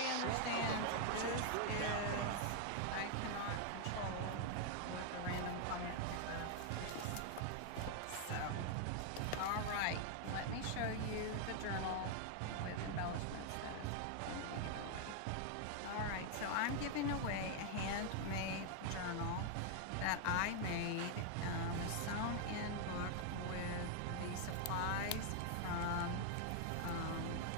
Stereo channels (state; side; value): different; both; correlation 0.00